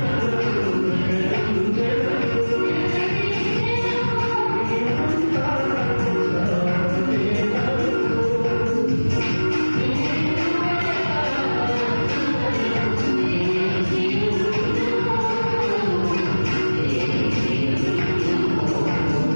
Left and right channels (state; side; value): inverted; both; correlation -1.00